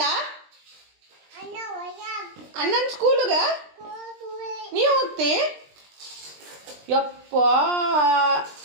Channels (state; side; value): late; left; 20 ms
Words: ಅಣ್ಣನ ಸ್ಕೂಲ್ಗೆ ನೀವು ಹೋಗ್ತಿ ಯಪ್ಪ